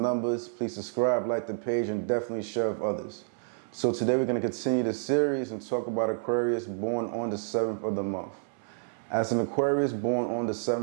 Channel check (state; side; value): silent; left; 58 dB below the other